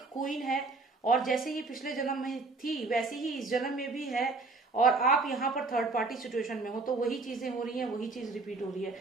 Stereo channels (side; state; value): left; quieter; 3.7 dB